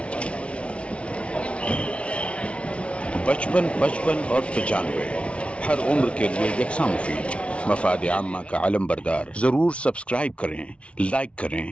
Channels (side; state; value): right; late; 0.061 ms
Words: बचपन और 95 हर उम्र के लिए यकसा मुफीद। मफाद आम्मा का आलम बरदार। जरूर सब्सक्राइब करें, लाइक करें,